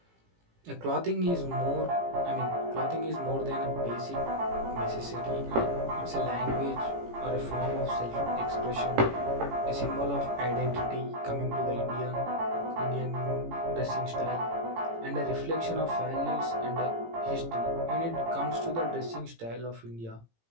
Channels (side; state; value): left; late; 18 ms